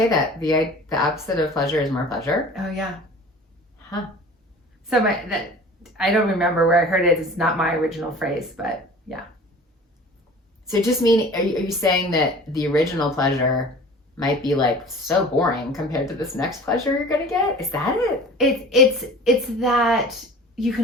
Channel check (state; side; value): normal; both; correlation 0.42